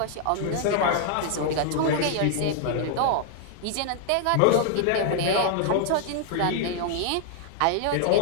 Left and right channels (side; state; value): both; different; correlation 0.00